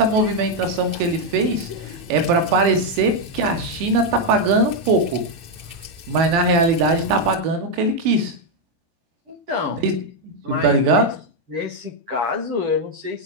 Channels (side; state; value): left; late; 9.0 ms